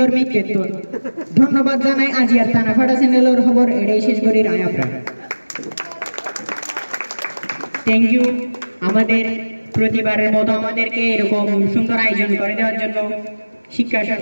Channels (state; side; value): inverted; both; correlation -1.00